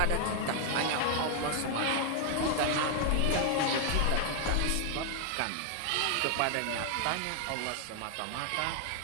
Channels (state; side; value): different; both; correlation 0.00